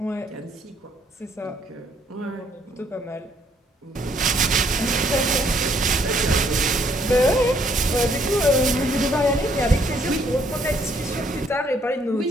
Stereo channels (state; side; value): normal; both; correlation 0.67